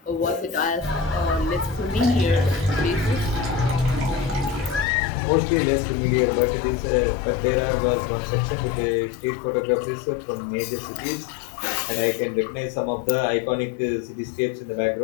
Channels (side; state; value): right; drops out; at 4.9 s